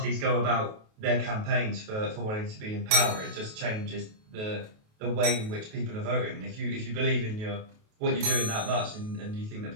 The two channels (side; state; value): left; late; 28 ms